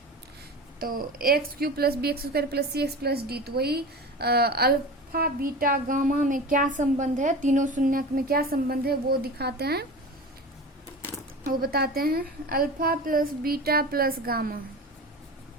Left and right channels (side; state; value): both; normal; correlation 0.32